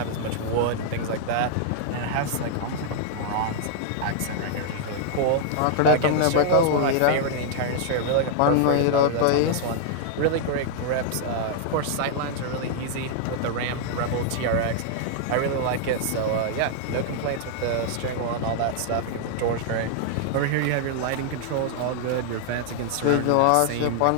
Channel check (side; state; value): both; different; correlation -0.01